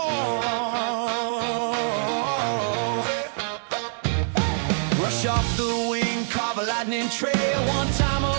Flash off the wing, carve a lightning trail. One time a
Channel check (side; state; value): left; silent; 62 dB below the other